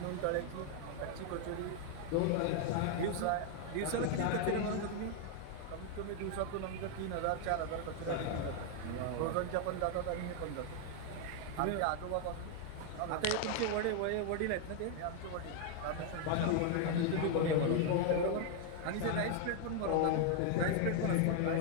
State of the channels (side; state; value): both; different; correlation 0.00